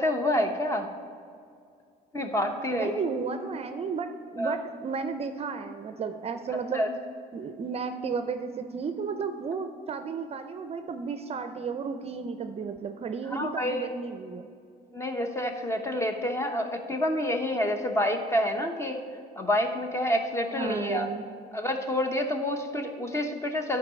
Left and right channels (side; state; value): both; normal; correlation 0.52